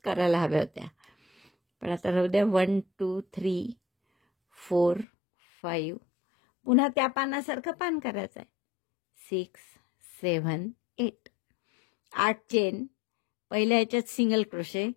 करायला हव्या होत्या, पण आता राहू द्या. 1, 2, 3, 4, 5. पुन्हा त्या पानासारखं पान करायचं आहे. 6, 7, 8. 8 चेन. पहिल्या ह्याच्यात सिंगल क्रोशे,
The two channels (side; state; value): right; drops out; at 5.1 s